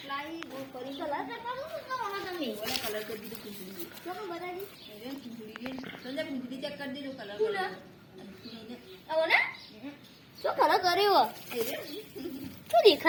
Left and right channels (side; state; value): both; identical; correlation 1.00